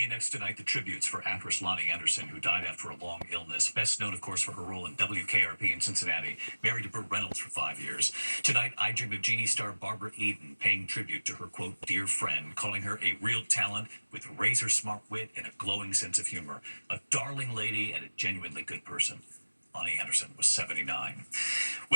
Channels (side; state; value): both; inverted; correlation -1.00